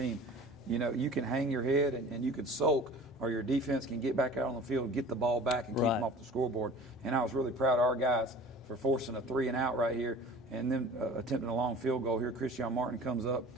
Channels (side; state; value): both; normal; correlation 0.43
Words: you can hang your head and you can sulk, or your defense can get back out on the field, get the ball back, and keep them off the scoreboard. And I was really proud of our guys for forcing a 3-and-out right here and then attempting a long field goal here. Christian Martin comes up